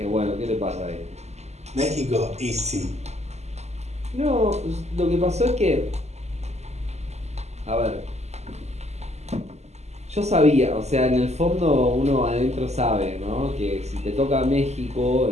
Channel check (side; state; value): left; late; 0.32 ms